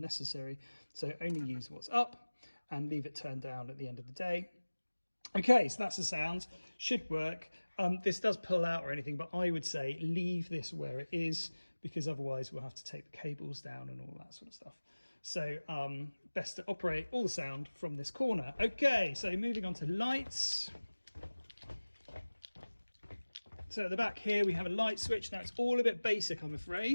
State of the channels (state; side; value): inverted; both; correlation -1.00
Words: So only use what's up and leave it turned down at the end of the day. Okay, so that's the sound. Should work. This does pull out or anything, but I would say leave this where it is because otherwise we'll have to take the cables down and all that sort of stuff. So best to operate all the sound from this corner. Okay, so moving on to lights. So at the back here we have a light switch. Now it's all a bit basic, I'm